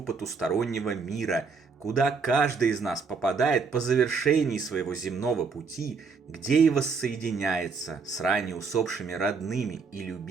потустороннего мира, куда каждый из нас попадает по завершении своего земного пути, где и воссоединяется с ранее усопшими родными и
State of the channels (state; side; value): quieter; left; 5.0 dB